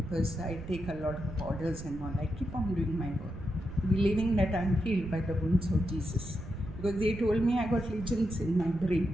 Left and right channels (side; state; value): right; noise; rumble, 12 dB below the sound